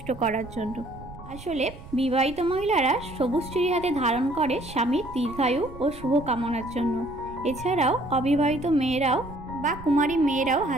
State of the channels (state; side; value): noise; right; rumble, 16 dB below the sound